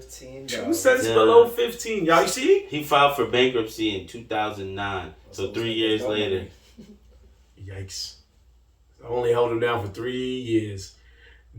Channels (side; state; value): both; identical; correlation 1.00